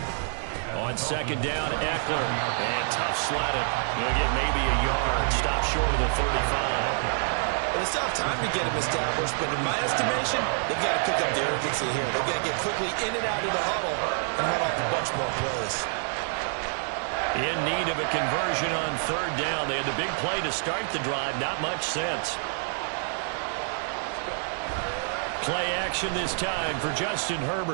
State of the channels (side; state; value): left; silent; 60 dB below the other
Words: On 2nd down, Eckler. And tough slatted. He'll get maybe a yard. Stop short of the 35. It's tough time to get him established, but in my estimation, they've got to pick up the urgency here. They've got to get quickly in and out of the huddle and run off a bunch more plays. In need of a conversion on 3rd down. They had the big play to start the drive. Not much sense. Play action this time for Justin